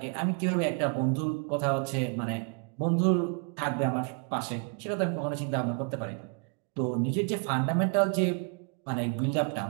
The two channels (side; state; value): left; quieter; 39.2 dB